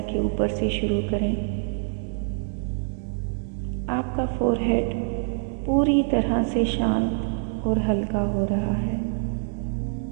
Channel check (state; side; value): silent; left; digital silence